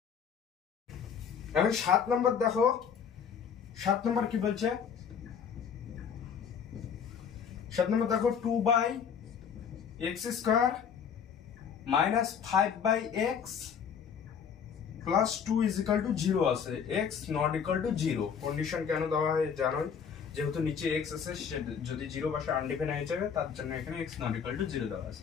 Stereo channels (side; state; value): right; quieter; 7.1 dB